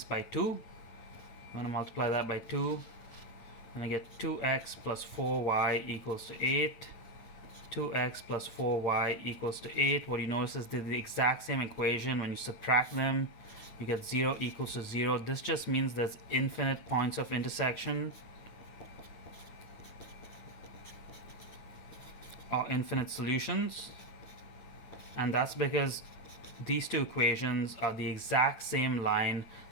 by 2, I'm going to multiply that by 2, and I get 2x plus 4y equals to 8. 2x plus 4y equals to 8. What you notice is they're the exact same equation. When you subtract them, you get 0 equals to 0. This just means there's infinite points of intersection, or infinite solutions, and that's because these two equations are the exact same line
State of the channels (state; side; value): late; right; 9.0 ms